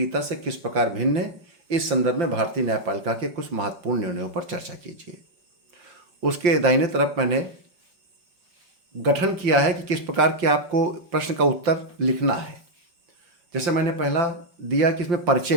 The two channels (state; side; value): late; left; 5.8 ms